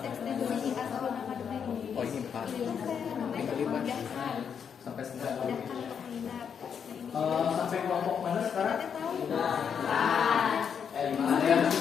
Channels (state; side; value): quieter; right; 7.3 dB